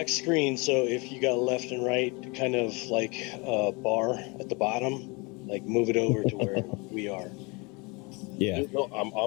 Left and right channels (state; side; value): quieter; right; 28.5 dB